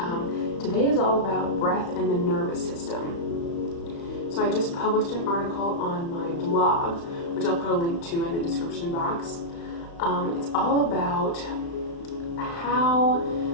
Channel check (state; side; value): late; right; 35 ms